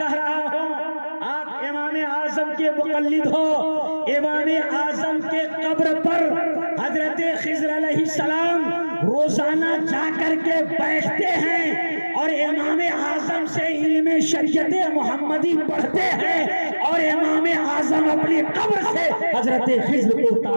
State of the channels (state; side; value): inverted; both; correlation -1.00